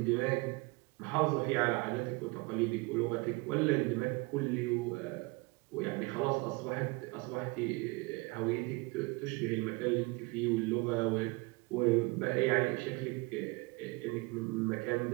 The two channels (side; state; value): left; quieter; 26.3 dB